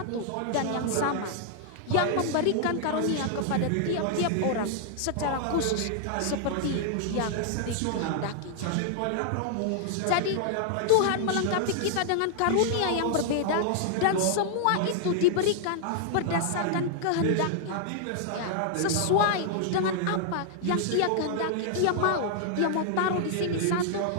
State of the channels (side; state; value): both; different; correlation -0.01